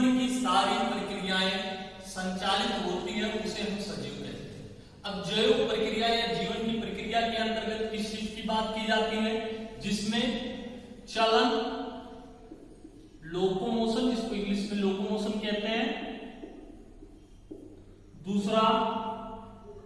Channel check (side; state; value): both; identical; correlation 1.00